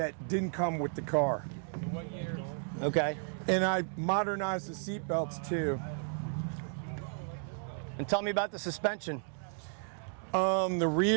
didn't come with the car. Okay. And I modernized the seat belts too. And tell me about the suspension. The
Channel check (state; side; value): silent; left; 55 dB below the other